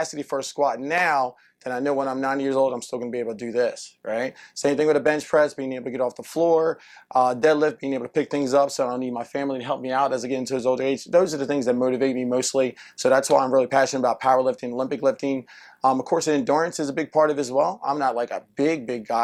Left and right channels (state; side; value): identical; both; correlation 1.00